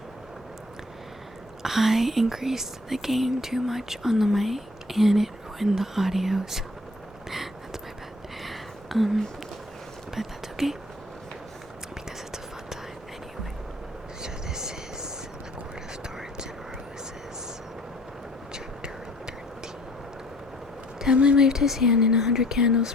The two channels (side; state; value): both; normal; correlation 0.58